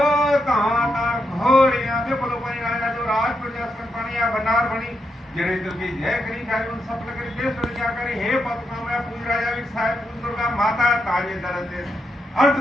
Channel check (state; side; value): normal; both; correlation 0.83